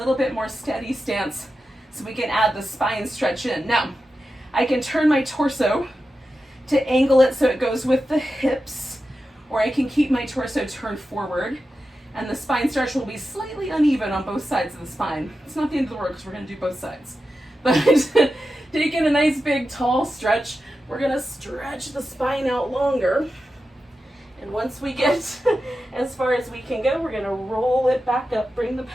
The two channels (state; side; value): normal; both; correlation 0.91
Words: bit more steady stance, so we can add the spine stretch in. Now, I can turn my torso to angle it so it goes with the hips, or I can keep my torso turned forward, and the spine stretch will be slightly uneven on both sides of the spine. It's not the end of the world because we're going to do both sides. But taking a nice big tall stretch, we're going to stretch the spine out longer. And once we get as far as we can go, we're going to roll it back up, bring the